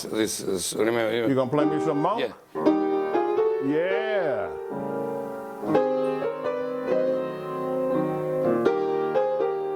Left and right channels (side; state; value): both; identical; correlation 1.00